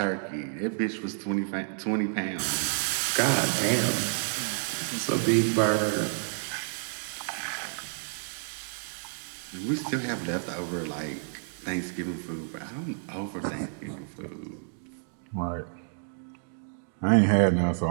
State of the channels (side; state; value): left; silent; digital silence